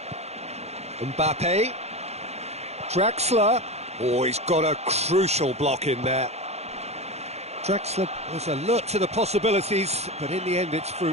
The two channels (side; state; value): left; late; 0.31 ms